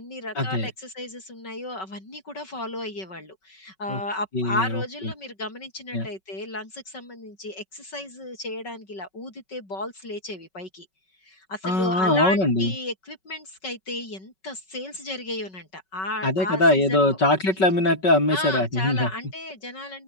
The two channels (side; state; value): right; late; 5.3 ms